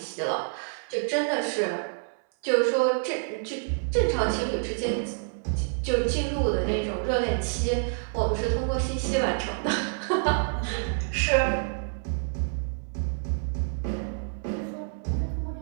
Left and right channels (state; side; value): silent; left; 60 dB below the other